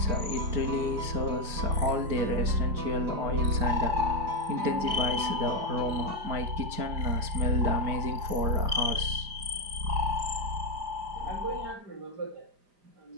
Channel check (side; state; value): left; late; 5.0 ms